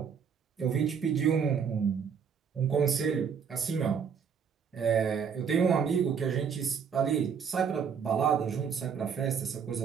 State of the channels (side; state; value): left; quieter; 6.8 dB